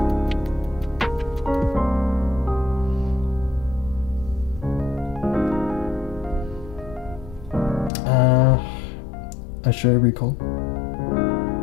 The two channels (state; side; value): drops out; right; at 7.9 s